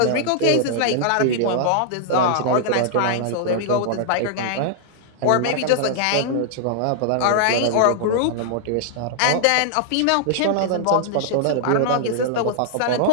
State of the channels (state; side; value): different; both; correlation -0.01